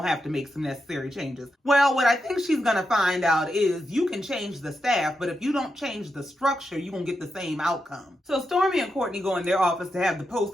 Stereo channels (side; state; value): both; normal; correlation 0.86